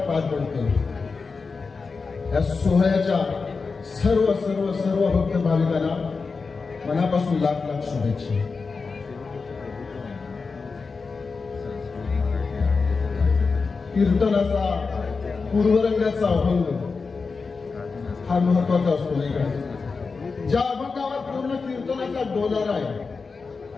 पार पडतो। या सोहळ्याच्या सर्व सर्व सर्व भक्त भाविकांना मनापासून लाख लाख शुभेच्छा। कीर्तनाचा पूर्वरंगाचा अभंग हा महत्वाचा असतो नाही का? ज्या अभंगावर पूर्ण कीर्तनाचा डोलारा आहे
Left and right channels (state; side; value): quieter; right; 4.6 dB